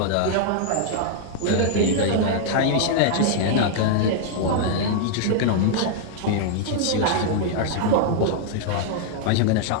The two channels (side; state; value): both; different; correlation -0.01